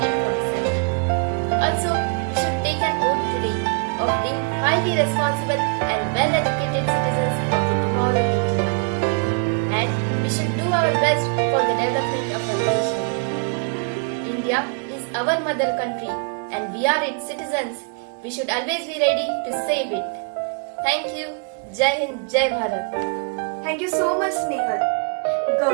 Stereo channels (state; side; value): quieter; left; 39.2 dB